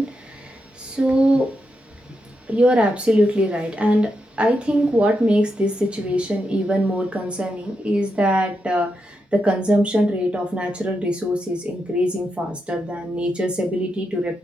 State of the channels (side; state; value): both; normal; correlation 0.85